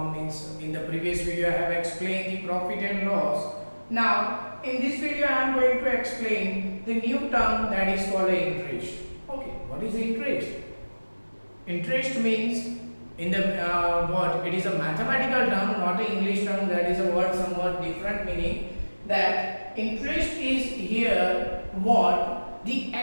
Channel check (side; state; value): both; inverted; correlation -1.00